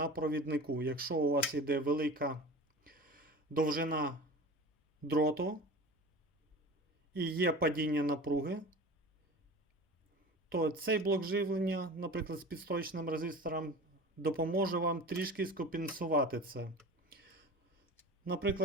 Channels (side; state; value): both; normal; correlation 0.35